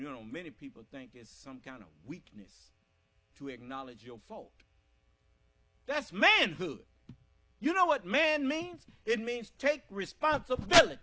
many people think it's some kind of weakness to acknowledge your fault. That's manhood. You know what man means? It means take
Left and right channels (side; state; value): both; identical; correlation 1.00